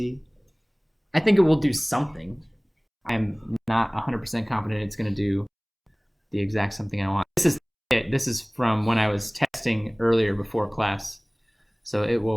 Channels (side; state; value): both; identical; correlation 1.00